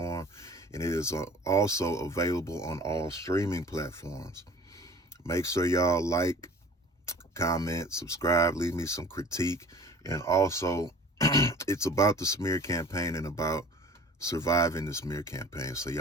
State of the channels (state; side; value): normal; both; correlation 0.45